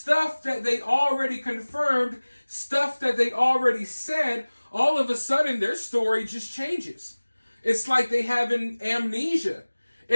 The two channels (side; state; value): both; inverted; correlation -1.00